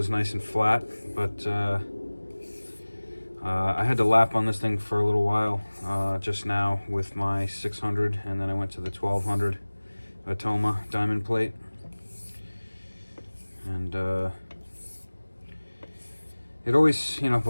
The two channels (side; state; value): both; inverted; correlation -1.00